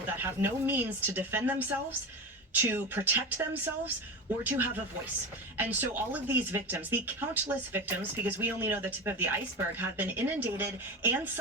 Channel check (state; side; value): normal; both; correlation 0.24